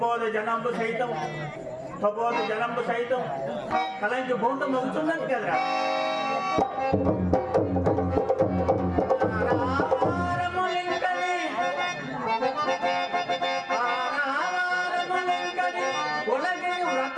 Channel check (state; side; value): identical; both; correlation 1.00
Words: జనంబు సైతం కలంకి భూతం అవుతున్నది కదరా.